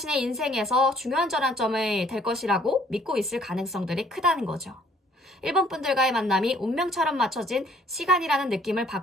인생에서 중요한 전환점이 될 것이라고 믿고 있을 가능성들이 크다는 거죠. 1번 분들과의 만남이 운명처럼 맞춰진 시간이라는 느낌을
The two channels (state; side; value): normal; both; correlation 0.60